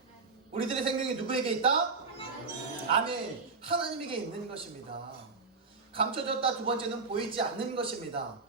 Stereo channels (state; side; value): quieter; left; 4.3 dB